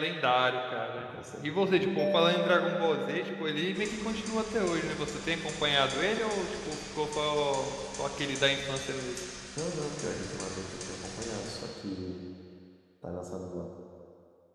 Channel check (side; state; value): both; identical; correlation 1.00